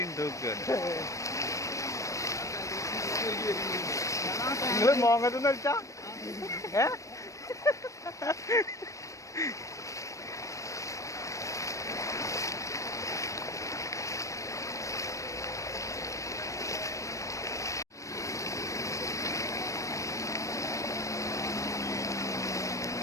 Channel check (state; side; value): late; right; 0.15 ms